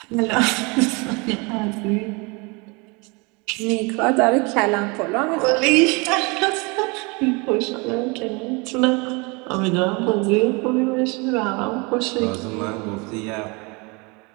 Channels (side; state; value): left; quieter; 28.7 dB